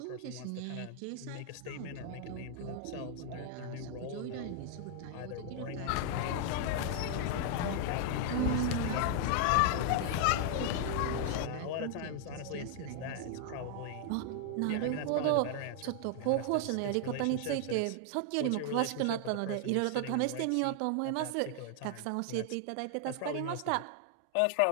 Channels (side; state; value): both; different; correlation 0.00